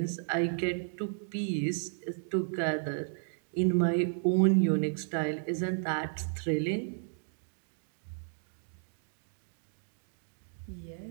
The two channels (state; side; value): silent; left; digital silence